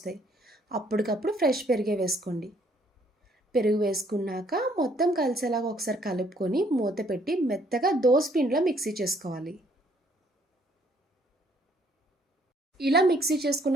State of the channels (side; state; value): both; normal; correlation 0.65